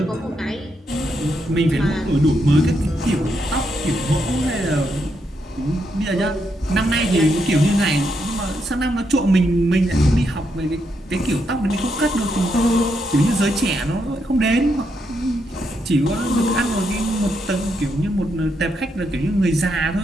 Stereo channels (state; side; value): normal; both; correlation 0.80